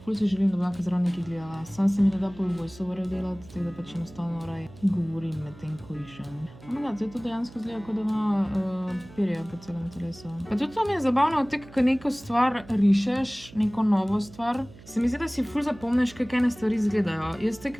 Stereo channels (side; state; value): right; noise; hum, 20 dB below the sound